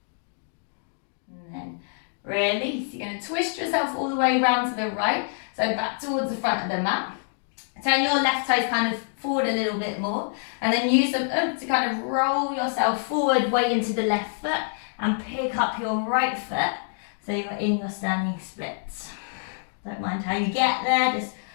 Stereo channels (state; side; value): silent; right; digital silence